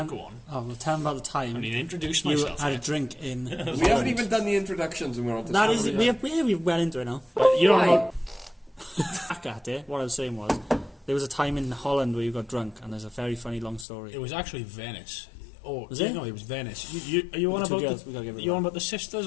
go on. Oh, well, tell them about the time I mean, introduce you myself. had a yet. drink in. We haven't even done the introductions and we're on to That is, we're well into it now. You don't know. Back at it. What I was saying was, there was a time in Holland where you got drunk, and there's a very funny long story. It was actually Venice. Oh, Was it? No, it was Venice. Are you on The two about girls, we gotta give it you that. on about the sisters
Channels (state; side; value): drops out; right; at 13.9 s